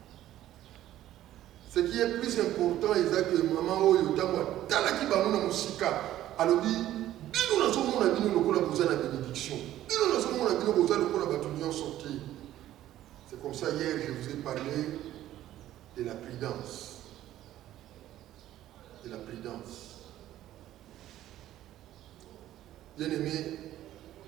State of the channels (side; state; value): left; quieter; 13.3 dB